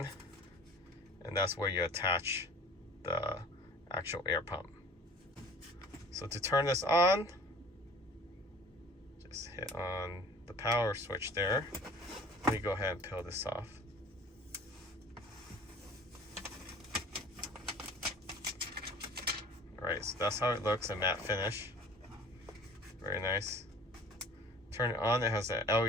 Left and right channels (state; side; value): normal; both; correlation 0.47